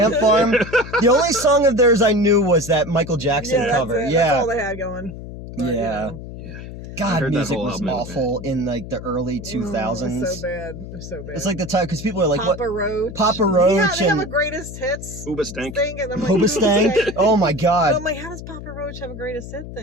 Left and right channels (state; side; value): noise; left; hum, 11 dB below the sound